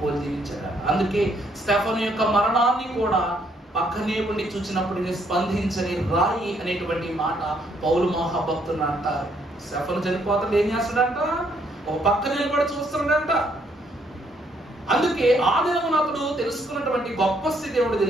జీవించారు. అందుకే స్టెఫను యొక్క మరణాన్ని కూడా పక్కనే ఉండి చూసినప్పుడు స్పందించని రాయి అనేటువంటి మాట పౌలు మహాభక్తులు అంటారు. స్టెఫను చనిపోతాడు, ఏం చేస్తాడంట? ఒక పక్క నిలబడి చూస్తున్నాడంట. అందుకే ఆ దినమున అతడు తెలుసుకున్నటువంటి గొప్ప స్థితి ఏమిటో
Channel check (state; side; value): normal; both; correlation 0.70